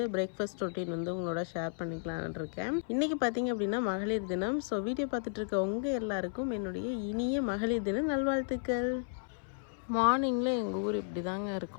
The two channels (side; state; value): right; silent; 55 dB below the other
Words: பிரேக்ஃபாஸ்ட் ரொட்டீன் வந்து உங்களோட ஷேர் பண்ணிக்கலான்னு இருக்கேன். இன்றைக்கி பார்த்தீங்க அப்படின்னா மகளிர் தினம். ஸோ வீடியோ பார்த்துட்டு இருக்க உங்கள் எல்லாருக்கும் என்னுடைய இனிய மகளிர் தின நல்வாழ்த்துக்கள். மார்னிங்கில் எங்கள் ஊர் இப்படி தாங்க